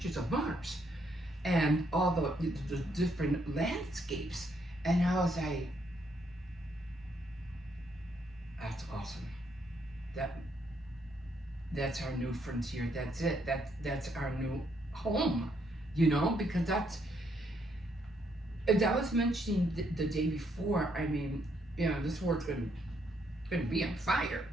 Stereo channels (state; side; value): normal; both; correlation 0.73